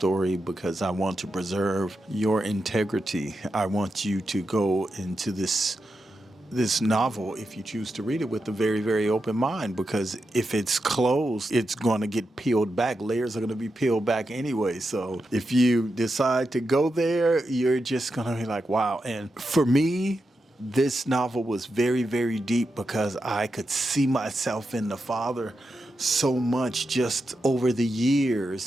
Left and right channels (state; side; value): normal; both; correlation 0.88